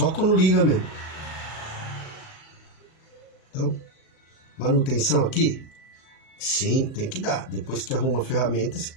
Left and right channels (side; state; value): right; late; 37 ms